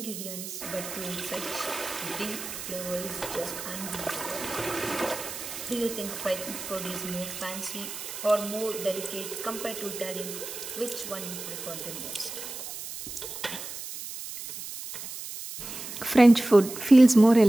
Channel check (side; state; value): right; noise; hiss, 9 dB below the sound